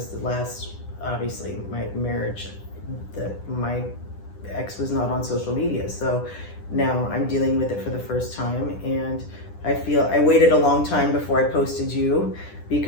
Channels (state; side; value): late; right; 10 ms